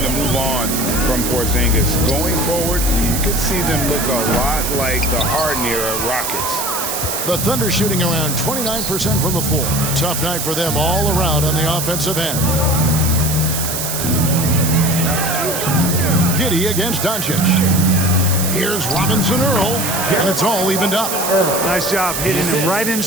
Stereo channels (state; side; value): noise; right; hiss, 3 dB below the sound